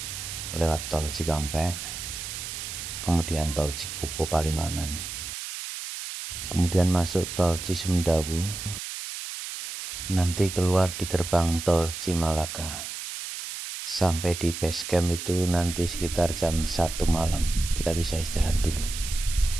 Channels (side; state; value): right; noise; hiss, 7 dB below the sound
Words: lewat tol Cikampek, kemudian tol Cikupo Palimanan, kemudian masuk tol Cisumdawu, nanti keluar di gerbang tol Cimalaka. Sampai di base camp itu nanti sekitar jam 1 malam. Kita bisa istirahat dulu.